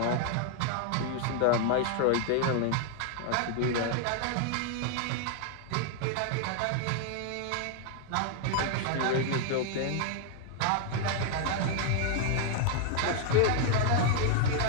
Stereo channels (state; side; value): different; both; correlation 0.00